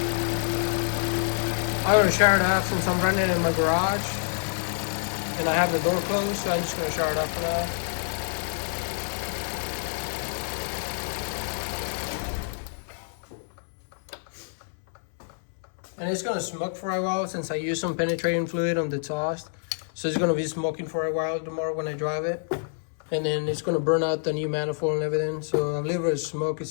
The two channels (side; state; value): right; silent; 60 dB below the other